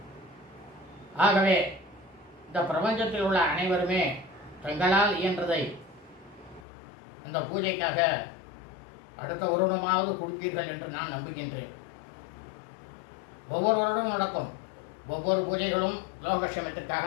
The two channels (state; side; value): drops out; right; at 6.7 s